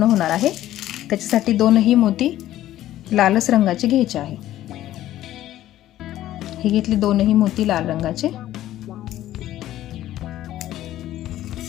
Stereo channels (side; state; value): right; quieter; 13.6 dB